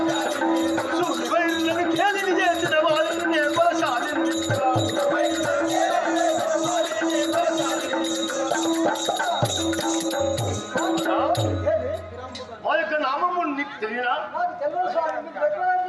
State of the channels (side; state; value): both; identical; correlation 1.00